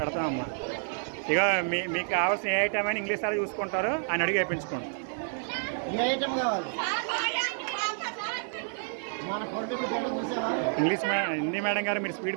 ఇక మీకు కావాల్సిన ఏ ఐటమ్ అయినా ఇంగ్లీష్ సార్ చూసుకుంటారు, ఆయన అడిగి వేయించుకోండి. ఇంగ్లీష్ హిందీ మేడం గారు మీరు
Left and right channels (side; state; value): left; silent; digital silence